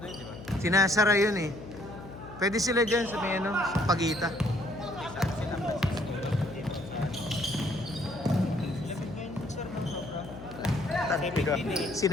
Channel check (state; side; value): noise; left; hum, 14 dB below the sound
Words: yun, di ba? Sinasara yun eh. Pwede sila dyan sa may sa Pagita. Saan sila?